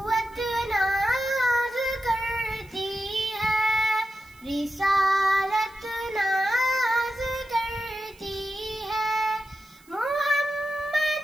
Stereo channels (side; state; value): right; noise; hiss, 28 dB below the sound